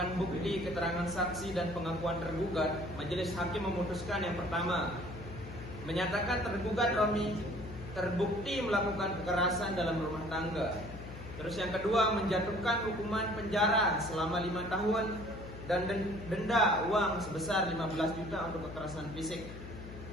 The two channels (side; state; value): left; noise; hum, 12 dB below the sound